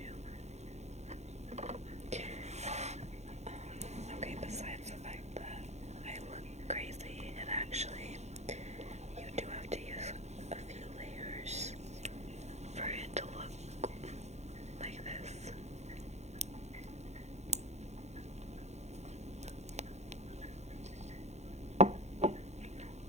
Okay, besides the fact that I look crazy, and actually, you do have to use a few layers for it to look like this.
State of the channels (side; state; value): left; late; 0.32 ms